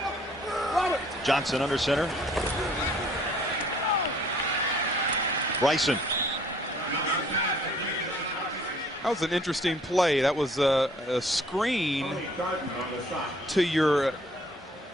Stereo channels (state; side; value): normal; both; correlation 0.58